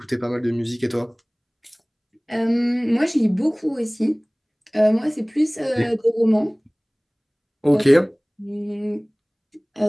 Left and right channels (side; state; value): both; identical; correlation 1.00